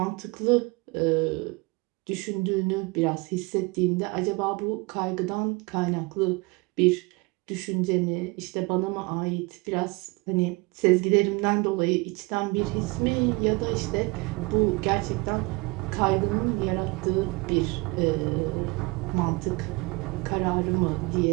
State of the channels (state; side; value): quieter; left; 25.9 dB